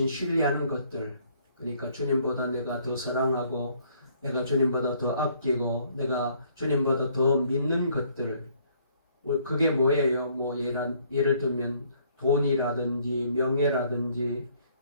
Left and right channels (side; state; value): both; inverted; correlation -0.64